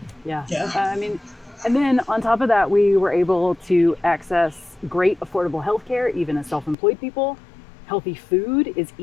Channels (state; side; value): drops out; right; at 6.8 s